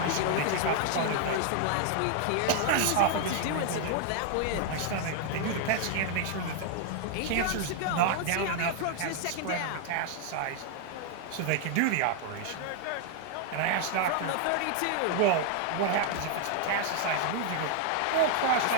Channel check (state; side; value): different; both; correlation 0.00